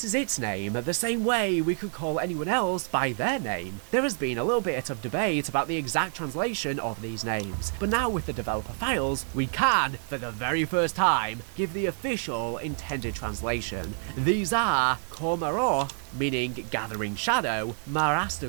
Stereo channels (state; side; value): silent; left; 59 dB below the other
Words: is its name, the same way we could call anyone else by their name. There has been a little bit of debate about the exact translation of these names, but now with the developer files, we can, for the very first time, give the official intended translation. These are Komarov meaning gathering shadow,